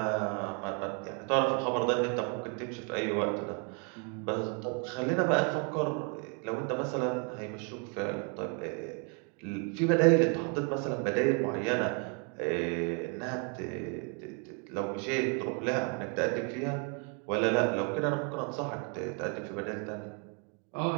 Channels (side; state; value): left; quieter; 37.4 dB